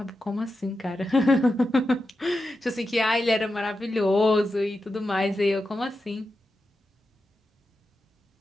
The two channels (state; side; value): normal; both; correlation 0.90